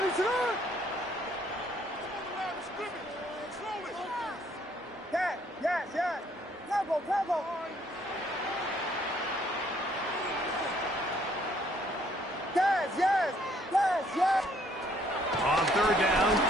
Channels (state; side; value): normal; both; correlation 0.65